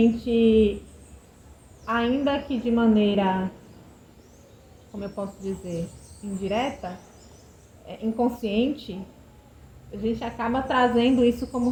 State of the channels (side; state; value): both; identical; correlation 1.00